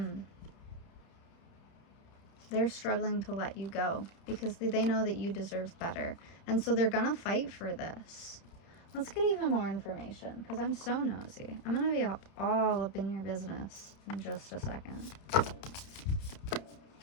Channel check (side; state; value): right; late; 30 ms